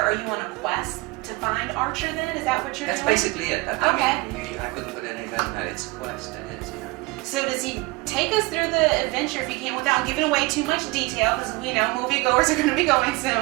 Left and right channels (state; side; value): quieter; left; 23.8 dB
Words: are you on a quest to find Archer then? Is that what you're That's doing? basically it. Okay. I couldn't put it any better than that. It's a quest, it is, yeah. So does he take us through the adventure, if you can, without giving away too much detail, because we know moviegoers are going to be going